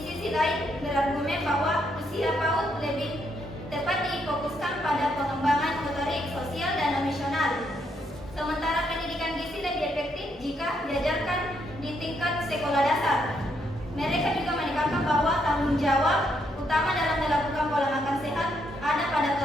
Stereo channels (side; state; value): both; normal; correlation 0.75